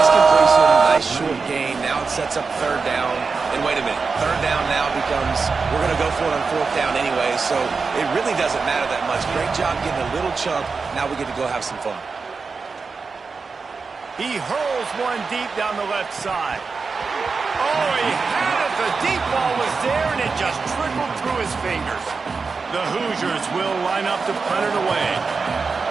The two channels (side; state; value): left; quieter; 4.7 dB